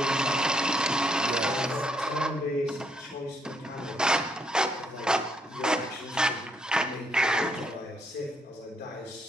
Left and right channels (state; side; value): normal; both; correlation 0.73